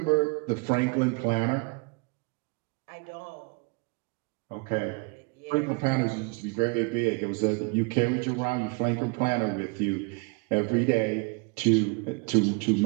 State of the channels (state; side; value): quieter; left; 30.4 dB